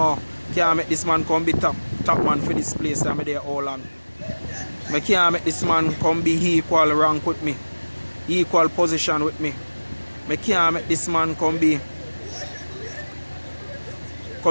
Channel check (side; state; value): both; inverted; correlation -1.00